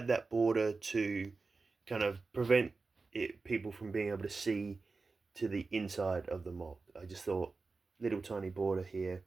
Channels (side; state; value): left; quieter; 4.0 dB